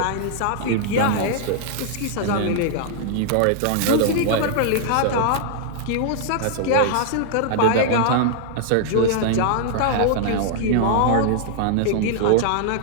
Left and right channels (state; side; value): different; both; correlation -0.01